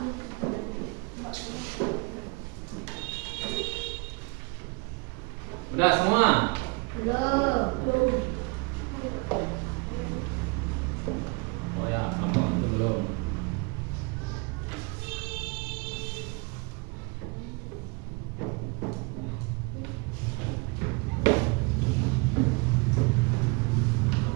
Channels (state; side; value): quieter; left; 29.3 dB